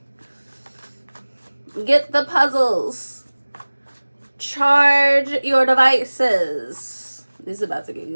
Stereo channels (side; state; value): both; inverted; correlation -1.00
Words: Get the puzzles. Charge your devices. This is about to get